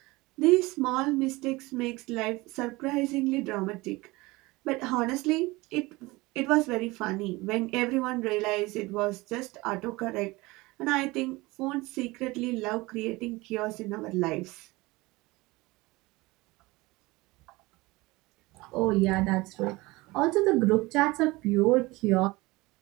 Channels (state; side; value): quieter; left; 21.9 dB